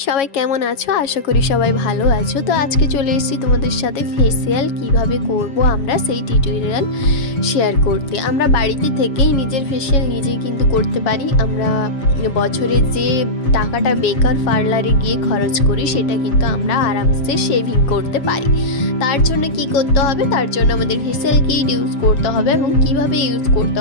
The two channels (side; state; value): right; late; 7.2 ms